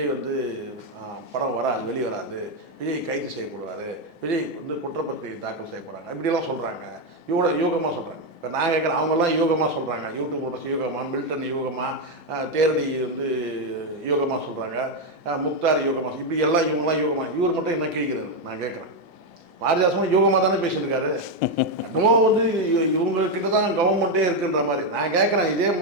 வந்து படம் வராது, வெளியே வராது, விஜய் கைது செய்யப்படுவார், விஜய் வந்து குற்றப்பத்திரிகை தாக்கல் செய்ய போகிறாங்க, இப்படிலாம் சொல்கிறாங்க, யூகமாக சொல்கிறாங்க. இப்போ நான் கேட்குறேன், அவங்கெல்லாம் யூகமாக சொல்கிறாங்க, யூடியூப் போட்டஸ் யூகமாக, மில்டன் யூகமாக, தேரடி வந்து யூகமாக சொல்கிறாங்க, முக்தார் யூகமாக, இப்படி எல்லாம் இவங்கெல்லாம் யூகமாக, இவர் மட்டும் என்ன கிழிக்கிறார் நான் கேட்குறேன். மாரிதாசமாக யூகமாக தானே பேசியிருக்காரு. இன்னமும் வந்து இவங்கக்கிட்ட தான் கவர்மெண்ட்டே இருக்குன்ற மாதிரி நான் கேட்குறேன். இதே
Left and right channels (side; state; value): both; normal; correlation 0.05